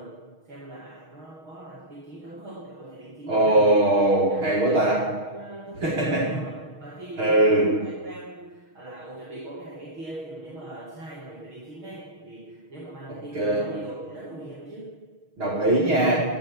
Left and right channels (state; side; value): late; left; 6.4 ms